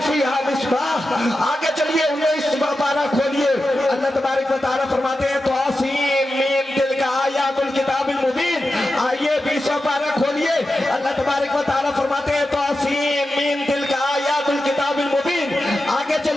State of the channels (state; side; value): normal; both; correlation 0.91